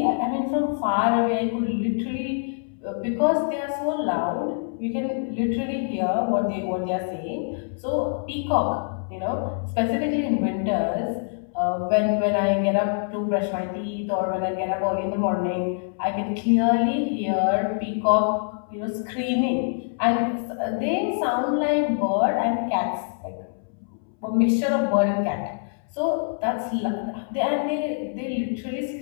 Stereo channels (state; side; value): silent; right; 62 dB below the other